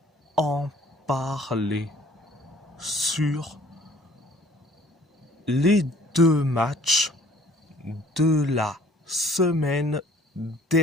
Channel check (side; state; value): both; normal; correlation 0.55